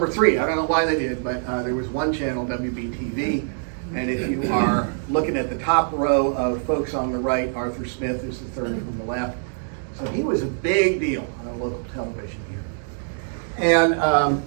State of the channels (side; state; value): left; silent; digital silence